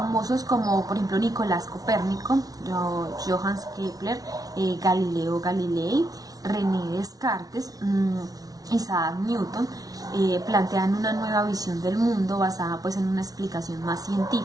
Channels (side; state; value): left; late; 0.18 ms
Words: como por ejemplo Nicolás Copérnico, Johannes Kepler, Galileo Galilei, René Descartes, Isaac Newton, plantean una nueva visión del mundo basada pues en una explicación más